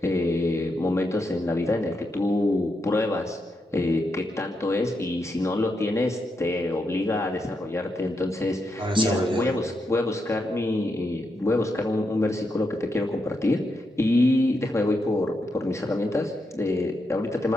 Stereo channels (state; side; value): normal; both; correlation 0.83